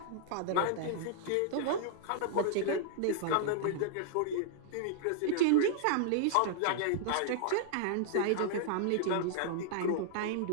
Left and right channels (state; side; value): different; both; correlation -0.01